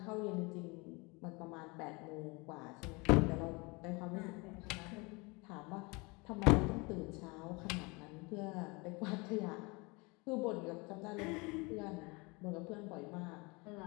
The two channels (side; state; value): right; quieter; 27.3 dB